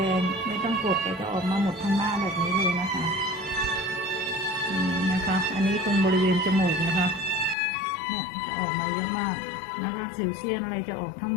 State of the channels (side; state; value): right; drops out; at 7.6 s